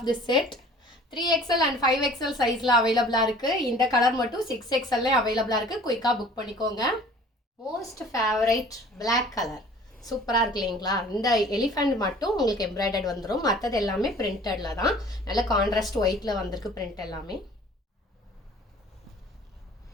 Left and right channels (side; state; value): both; normal; correlation 0.49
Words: this set. 3XL and 5XL சைஸ்ல அவைலபிளா இருக்கு. இந்த கலர் மட்டும் 6XL அவைலபிளா இருக்கு. குயிக்கா புக் பண்ணிக்கோங்க. மோஸ்ட் ஃபேவரைட் பிளாக் கலர் சூப்பராக இருக்கு இல்லைங்களா? இந்த எலிஃபண்ட் மட்டும் உங்களுக்கு எம்ப்ராய்டர்ட் வந்துடும். மற்றது எல்லாமே பிரிண்டடில் தான். நல்ல கான்ட்ராஸ்ட் ஒயிட்டில் வந்திருக்கு பிரிண்ட் எல்லாமே.